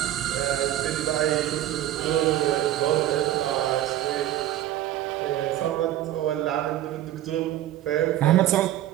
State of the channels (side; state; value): left; quieter; 13.1 dB